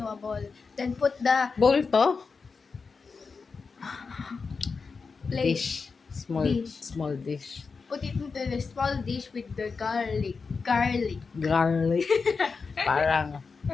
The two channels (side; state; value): right; quieter; 4.9 dB